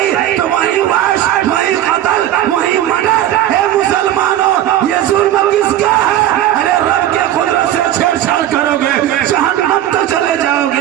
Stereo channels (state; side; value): quieter; left; 12.4 dB